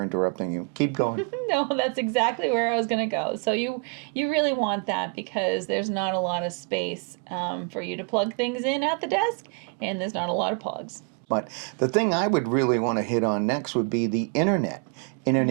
interrupting you. Keep going. No, that's exactly where I was going to go. So you really want that because there's not a lot of space for you to plug things in at the desk, and there's not a lot of plugs. But the thing I would really want to hit on next would be the internet.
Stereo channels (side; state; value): left; quieter; 36.3 dB